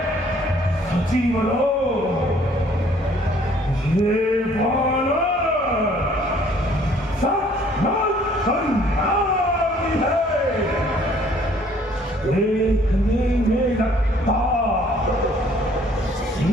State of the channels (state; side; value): normal; both; correlation 0.59